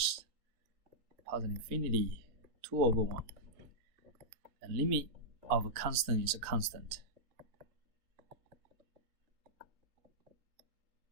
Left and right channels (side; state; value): left; late; 3.9 ms